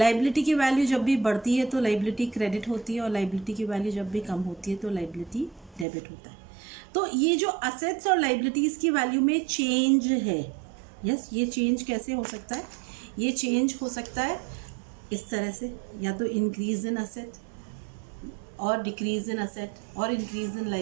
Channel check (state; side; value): drops out; left; at 5.9 s